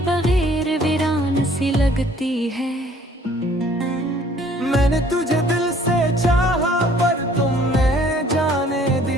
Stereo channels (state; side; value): normal; both; correlation 0.57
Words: बगैर वीरान सी लगती है। मैंने तुझे दिल से चाहा पर तुमने जाने